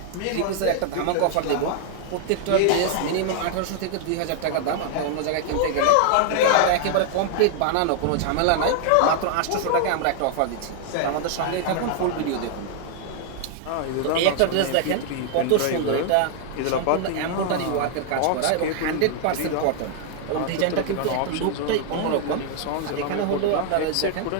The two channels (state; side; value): different; both; correlation 0.00